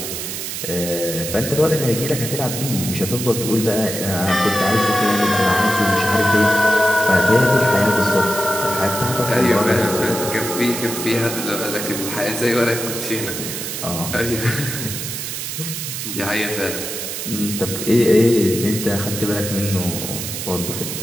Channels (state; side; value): noise; right; hiss, 5 dB below the sound